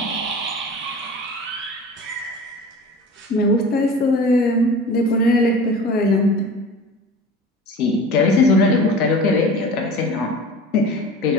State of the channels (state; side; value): normal; both; correlation 0.38